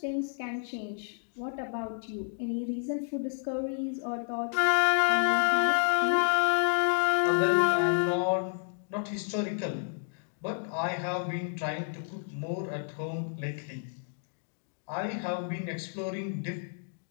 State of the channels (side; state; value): right; silent; digital silence